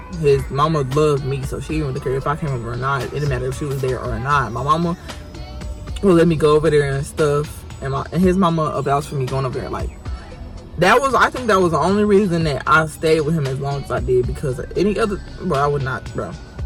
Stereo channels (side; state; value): both; identical; correlation 1.00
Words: His mama loved me, so she didn't really care if I came over or not. It didn't matter if she was there or not. My mama would let me go over there and stuff, and his mama vouched for me going over there. Like, I think that was the only reason that I stayed with him as long as I did, because any other, bro, I would not, bro.